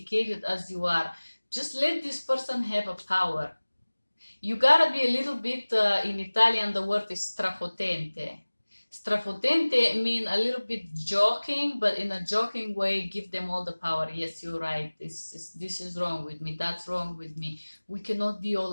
as you are. Just let this person have a power. You gotta be a little bit, in Italian the word is strafotente. Strafotente mean a little bit joking, but in a joking way, give them all the power. Yes, you're right. This is wrong with me. That's wrong with me. We cannot be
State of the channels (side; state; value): both; inverted; correlation -1.00